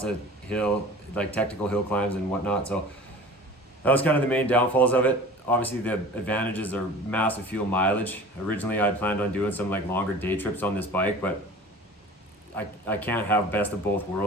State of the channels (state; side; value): normal; both; correlation 0.41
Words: of technical hill climbs and whatnot. So that was kind of the main downfalls of it. Obviously the advantages are massive fuel mileage. Originally I'd planned on doing some longer day trips on this bike, but I can't have best of both